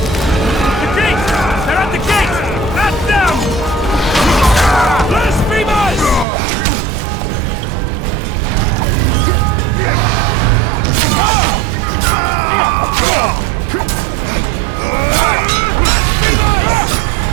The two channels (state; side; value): drops out; left; at 6.2 s